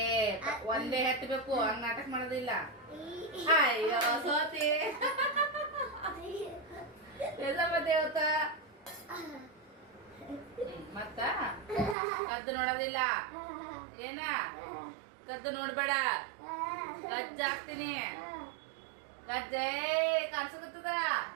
ಒಂದೇ ಹತ್ತಬೇಕು, ಹಂಗ ನಾಟಕ ಮಾಡೋದಿಲ್ಲ. ಅಯ್ಯೋ ಸೋತಿ ದೇವತ ಮತ್ತ ಕದ್ದು ನೋಡೋದಿಲ್ಲ. ಏನ ಕದ್ದು ನೋಡ್ಬೇಡ, ಕಜ್ಜ ಹಾಕ್ತೀನಿ. ಕಜ್ಜೆ ಕಾಣಿಸಕತ್ತದ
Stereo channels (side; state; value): left; drops out; at 12.0 s